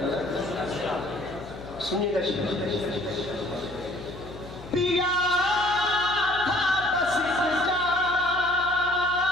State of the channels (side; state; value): left; noise; hum, 16 dB below the sound